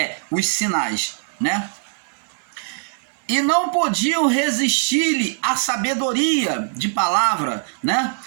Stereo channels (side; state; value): left; silent; digital silence